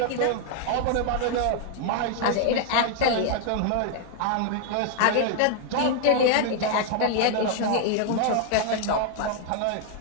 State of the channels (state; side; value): different; both; correlation 0.00